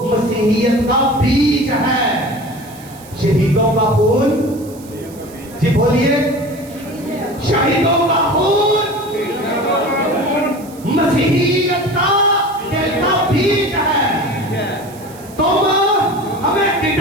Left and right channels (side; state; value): right; noise; hiss, 21 dB below the sound